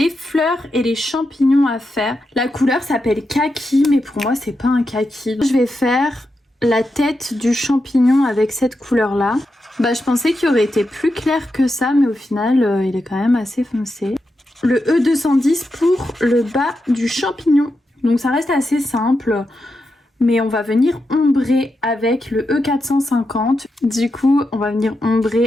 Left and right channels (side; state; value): both; normal; correlation 0.87